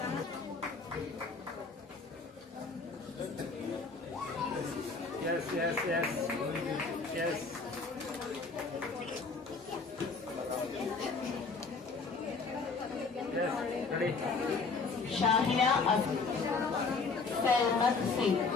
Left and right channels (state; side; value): quieter; right; 4.4 dB